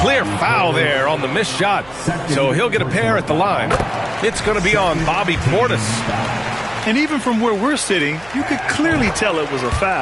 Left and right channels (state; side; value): noise; right; hum, 23 dB below the sound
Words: foul there on the missed shot. So he'll get a pair at the line. It's going to be on Bobby Portis. And even from where we're sitting, you could clearly tell it was a